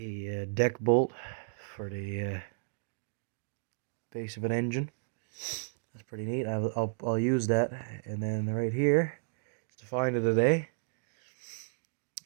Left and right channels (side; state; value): left; silent; digital silence